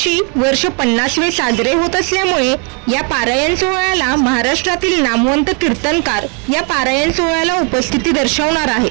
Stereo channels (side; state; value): left; quieter; 33.9 dB